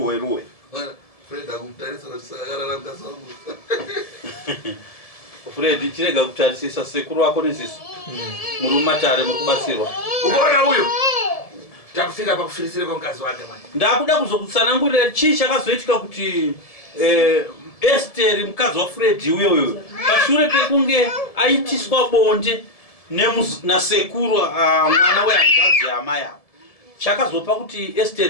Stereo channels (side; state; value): right; late; 1.7 ms